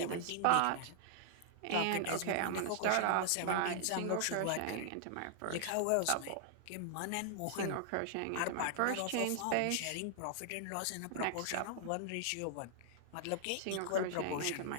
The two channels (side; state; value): both; different; correlation 0.00